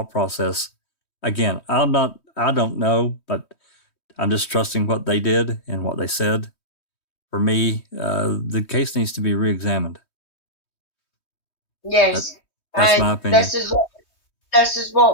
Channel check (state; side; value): late; right; 3.2 ms